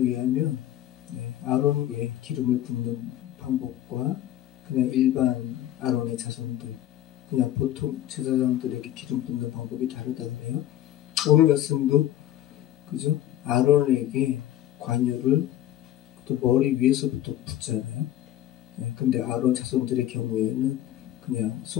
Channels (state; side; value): quieter; right; 12.5 dB